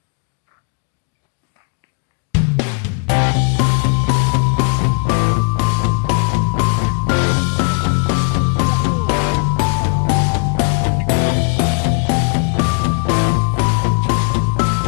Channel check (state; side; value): quieter; right; 37.8 dB